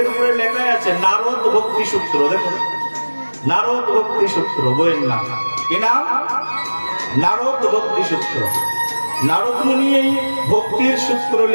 উপরে লেখা আছে নারদ ভক্তি সূত্র। দেখো নারদ ভক্তি সূত্র বইয়ের নাম। কি নাম? নারদ ভক্তি সূত্র। নারদ মুনি এই ভক্তির সূত্র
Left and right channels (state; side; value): inverted; both; correlation -1.00